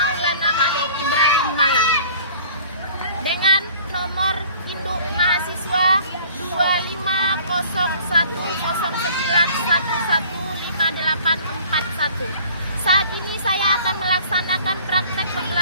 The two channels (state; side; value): inverted; both; correlation -0.50